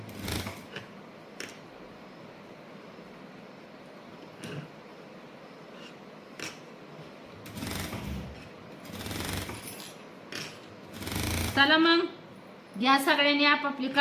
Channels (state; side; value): identical; both; correlation 1.00